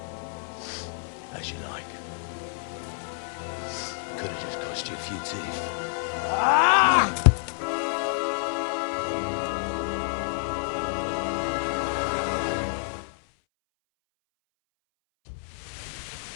As you like. Could have just cost you a few teeth. Ah!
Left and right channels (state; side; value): silent; right; 59 dB below the other